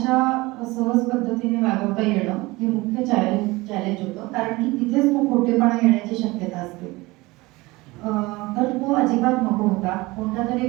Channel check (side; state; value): left; quieter; 21.7 dB